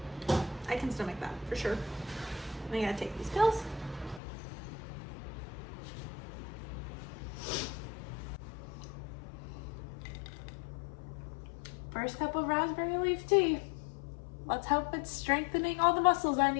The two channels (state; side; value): drops out; right; at 4.2 s